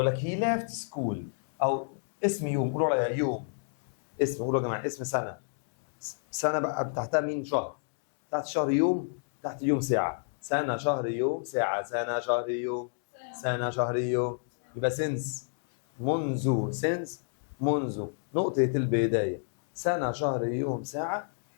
لك هي ليفت سكول، او اسم يوم، قولوا عليها يوم. اسم، قولوا يا جماعه اسم سنه. سنه بقى تحتها مين؟ شهر. تحت شهر يوم، تحت يوم ساعه. سنه شهر يوم ساعه، سنه شهر يوم، سنه شهر يوم. يبقى سينس منذ، سينس منذ نقطه البدايه، سنه شهر يوم ساعه.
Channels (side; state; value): right; silent; digital silence